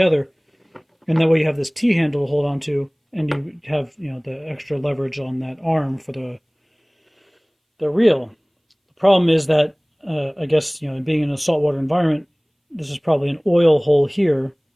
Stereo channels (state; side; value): identical; both; correlation 1.00